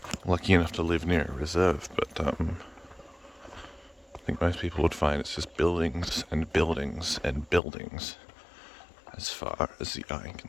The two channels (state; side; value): drops out; right; at 7.6 s